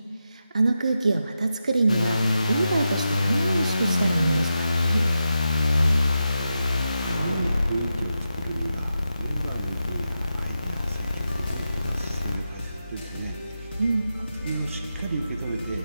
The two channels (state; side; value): inverted; both; correlation -0.89